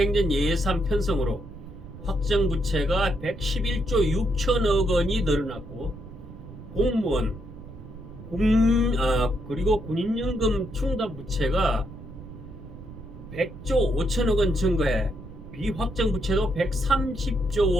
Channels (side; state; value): right; noise; rumble, 15 dB below the sound